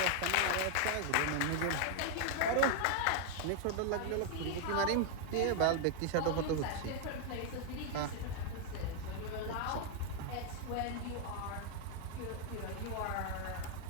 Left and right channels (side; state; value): both; different; correlation 0.00